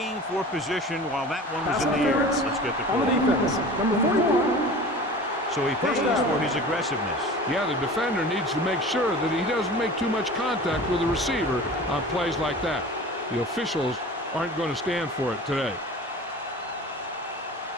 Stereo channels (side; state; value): both; normal; correlation 0.38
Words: for position while that one was in the air. Let's get the call. On the defense, number 41. So he pays for his aggressiveness. Yeah, the defender needs to make sure that he doesn't make too much contact with the receiver on plays like that. The officials aren't going to stand for it today.